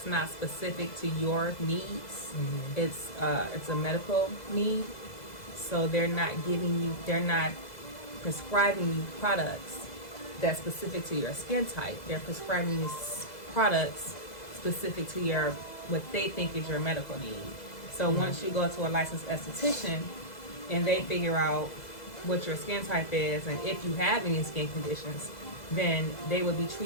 not specific to your needs. It's a medical need, so they're not prescribing you products that's specific to your skin type. They're prescribing you products specific to what they think is your medical need. So once you go to a licensed esthetician and they figure out what your skin type is and if you have any skin conditions, then they will be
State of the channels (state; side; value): late; right; 2.0 ms